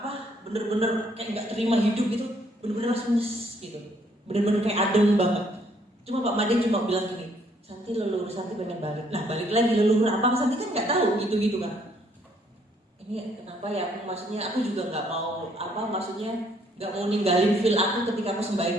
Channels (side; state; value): both; normal; correlation 0.67